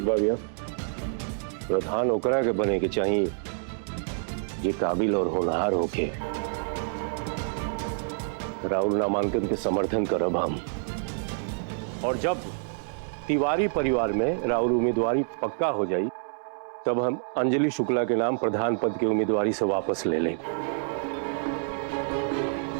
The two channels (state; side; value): silent; left; 60 dB below the other